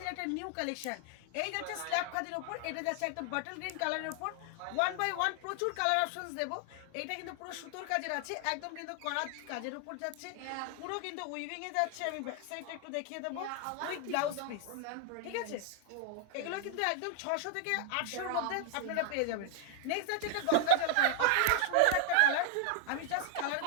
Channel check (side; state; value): both; different; correlation 0.00